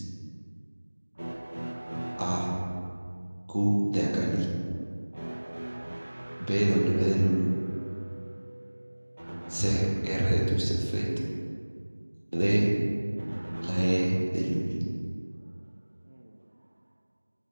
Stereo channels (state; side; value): inverted; both; correlation -1.00